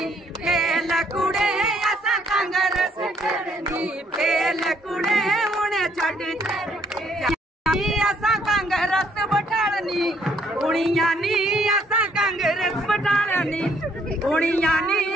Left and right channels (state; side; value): normal; both; correlation 0.67